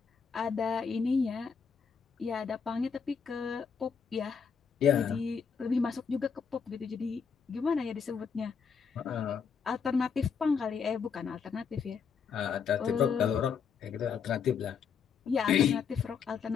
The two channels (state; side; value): quieter; right; 6.3 dB